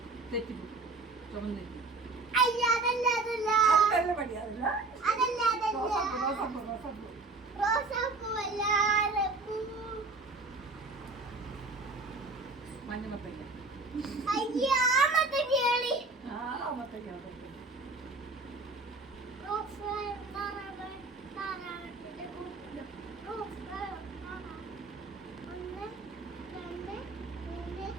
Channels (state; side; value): quieter; left; 3.5 dB